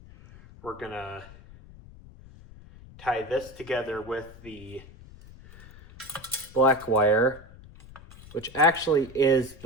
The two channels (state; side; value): noise; left; rumble, 20 dB below the sound